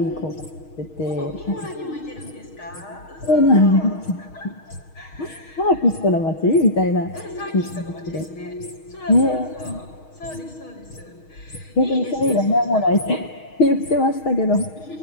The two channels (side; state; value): right; late; 6.4 ms